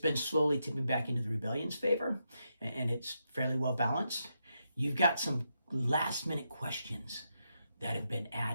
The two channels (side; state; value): both; inverted; correlation -0.83